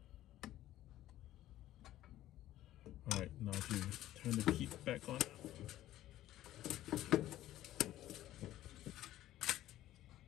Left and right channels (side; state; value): right; quieter; 13.9 dB